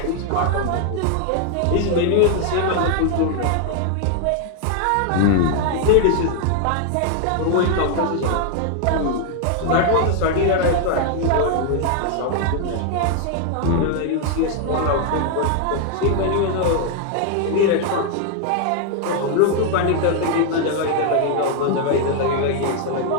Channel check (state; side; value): different; both; correlation 0.00